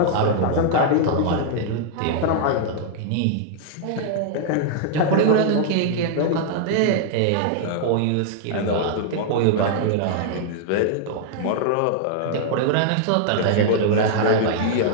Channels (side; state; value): both; different; correlation -0.01